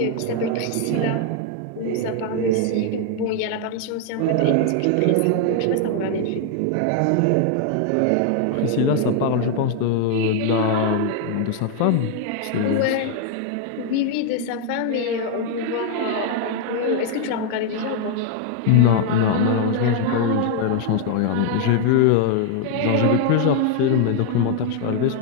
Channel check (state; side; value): different; both; correlation 0.00